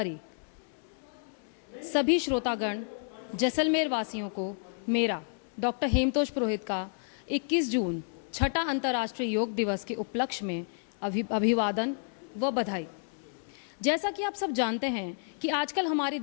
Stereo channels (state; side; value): silent; right; 57 dB below the other